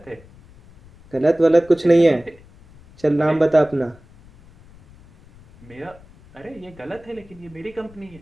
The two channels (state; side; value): noise; left; rumble, 24 dB below the sound